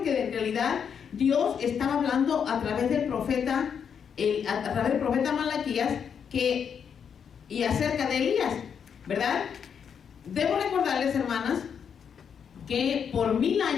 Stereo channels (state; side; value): quieter; right; 7.3 dB